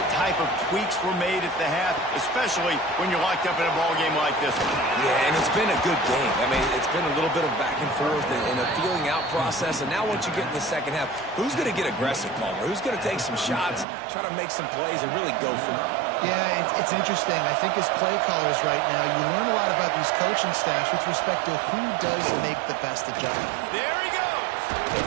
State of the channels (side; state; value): left; drops out; at 13.9 s